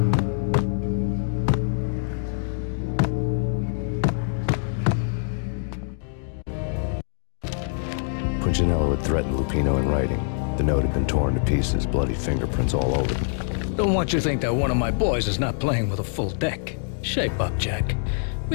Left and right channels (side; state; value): right; silent; digital silence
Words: Punchinello had threatened Lupino in writing. The note had been torn to pieces, bloody fingerprints all over them. Don't want you to think that one of my boys is not playing with a full deck. Shape up, Jack.